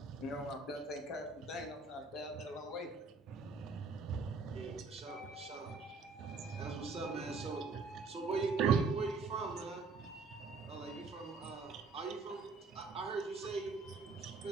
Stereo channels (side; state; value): left; quieter; 4.2 dB